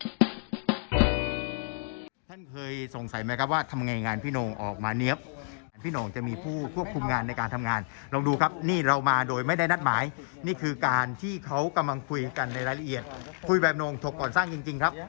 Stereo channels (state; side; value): silent; right; 58 dB below the other